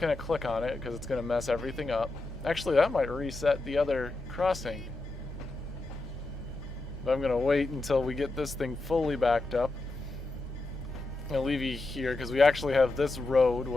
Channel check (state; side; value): quieter; right; 3.1 dB